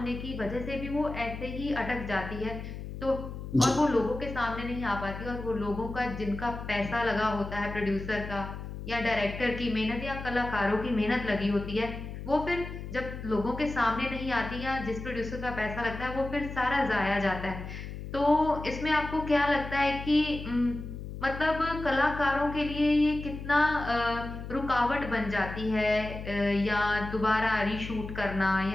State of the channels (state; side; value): noise; left; hum, 9 dB below the sound